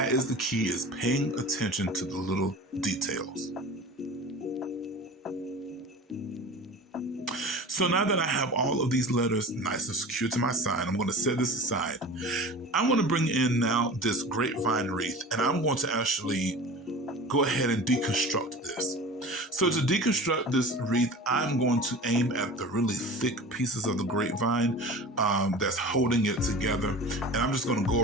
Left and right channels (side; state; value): both; normal; correlation 0.37